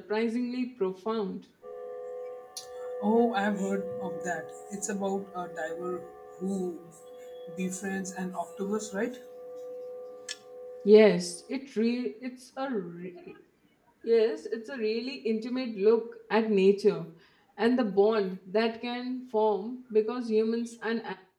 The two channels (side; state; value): both; identical; correlation 1.00